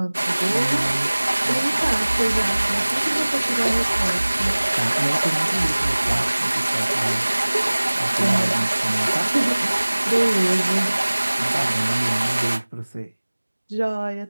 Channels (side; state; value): both; inverted; correlation -1.00